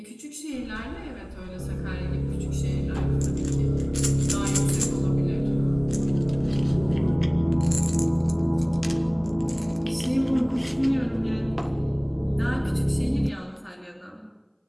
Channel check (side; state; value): both; identical; correlation 1.00